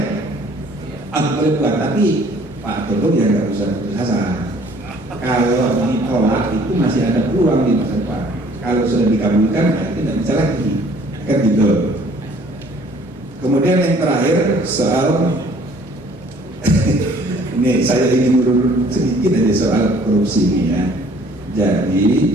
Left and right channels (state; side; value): normal; both; correlation 0.56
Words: Aku boleh buat, tapi Pak Tolong ya nggak usah putus asa. Kalau ditolak itu masih ada peluang di masa depan. Kalau sudah dikabulkan, ya tidak bisa lagi, kan gitu. Kemudian yang terakhir soal ini saya ingin urut sedikit aja soal korupsi ini ya.